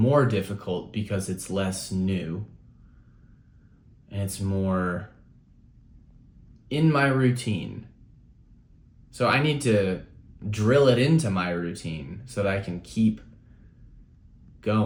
difficult because it's less new and it's more in my routine. So I need to drill it into my routine so that I can keep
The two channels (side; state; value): both; identical; correlation 1.00